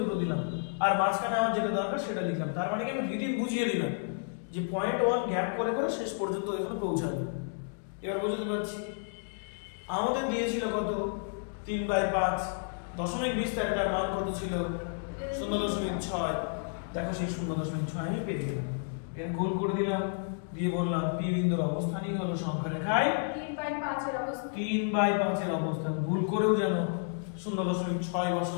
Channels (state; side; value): silent; right; digital silence